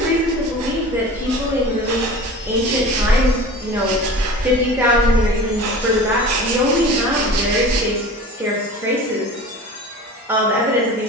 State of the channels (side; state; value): both; normal; correlation 0.37